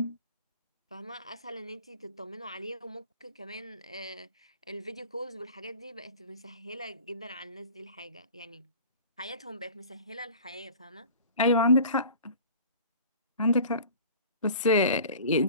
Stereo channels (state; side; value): inverted; both; correlation -0.43